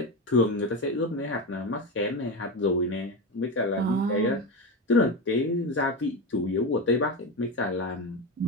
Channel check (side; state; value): both; normal; correlation 0.18